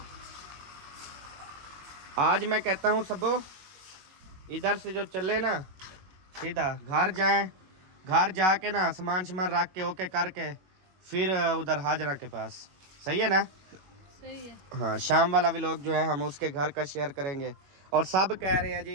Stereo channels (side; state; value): left; late; 21 ms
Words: आज मैं कहता हूँ सबो इधर से जो चले ना सीधा घर जाएं, घर जाके ना सामान सामान रख के ओके करके फिर उधर हाजरा के पास, सही है ना? सही है। हाँ शाम वाला भी लोग जो है हम उसके घर का शेयर करेंगे। और सब कह रहे हैं